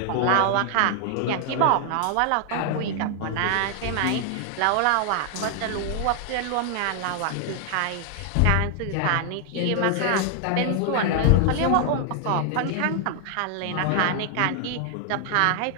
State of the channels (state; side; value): different; both; correlation 0.00